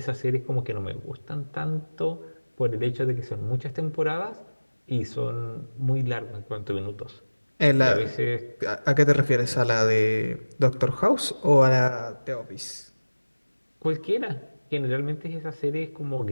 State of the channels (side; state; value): both; inverted; correlation -1.00